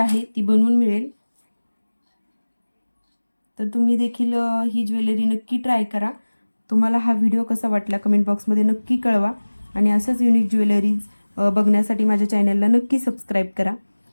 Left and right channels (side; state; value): both; inverted; correlation -1.00